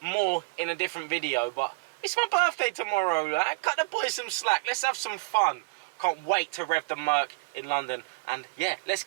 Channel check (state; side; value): quieter; left; 28.7 dB